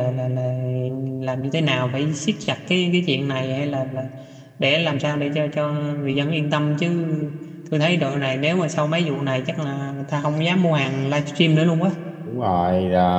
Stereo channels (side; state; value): both; identical; correlation 1.00